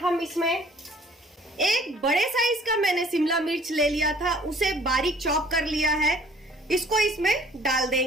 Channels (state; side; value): normal; both; correlation 0.56